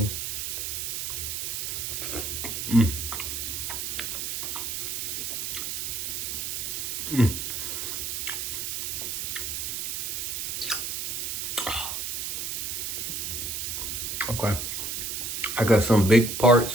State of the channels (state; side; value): noise; right; hiss, 2 dB below the sound